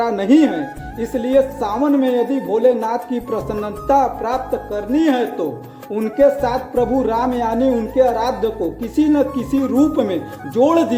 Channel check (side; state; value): both; identical; correlation 1.00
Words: नहीं है। इसलिए सावन में यदि भोलेनाथ की प्रसन्नता प्राप्त करनी है तो उनके साथ प्रभु राम यानी उनके आराध्य को किसी न किसी रूप में जोड़